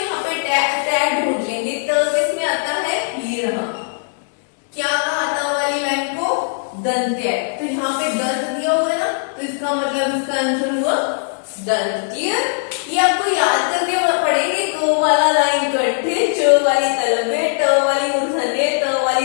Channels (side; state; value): right; silent; digital silence